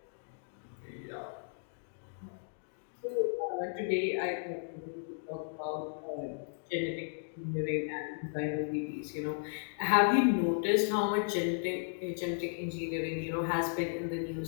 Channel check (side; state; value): right; silent; digital silence